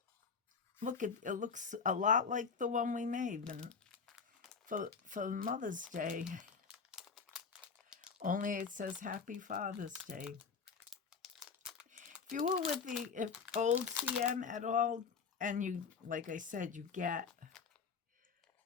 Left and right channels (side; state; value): right; quieter; 5.6 dB